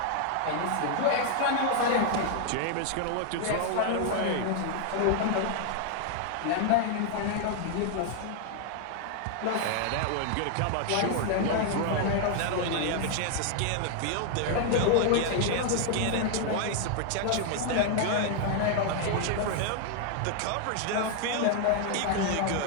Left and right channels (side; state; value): both; different; correlation 0.00